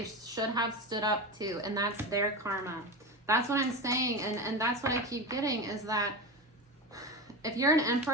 should have stood up to, and that's their karma. That's what I'm saying, and that's what I keep getting, is that if you're an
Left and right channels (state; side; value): normal; both; correlation 0.22